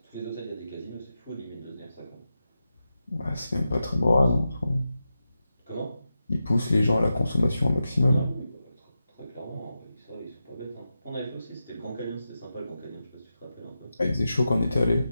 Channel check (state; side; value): inverted; both; correlation -0.90